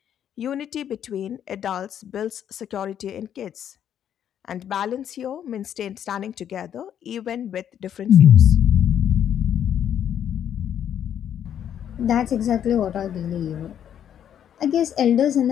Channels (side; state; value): right; quieter; 9.6 dB